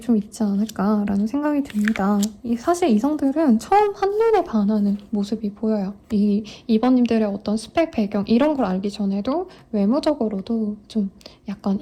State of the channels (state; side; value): identical; both; correlation 1.00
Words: 있지 않을까라는 생각이 듭니다. 사실 이성들은 처음 한눈에 반하는 모습이 보여요. 2번님들의 어떤 스펙 배경 이런 걸 알기 전에도 외모적으로도 좀 약간